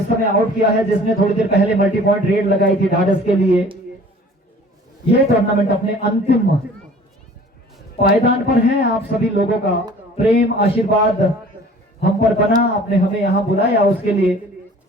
समय आउट किया है जिसने थोड़ी देर पहले मल्टी पॉइंट रेड लगाई थी ढाढस के लिए। ये टूर्नामेंट अपने अंतिम पायदान पर है। आप सभी लोगों का प्रेम आशीर्वाद हम पर बना, आपने हमें यहाँ बुलाया, उसके लिए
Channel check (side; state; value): both; normal; correlation 0.49